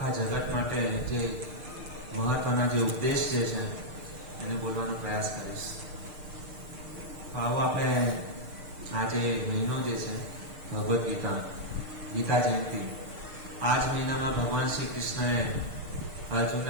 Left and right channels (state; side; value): late; left; 6.6 ms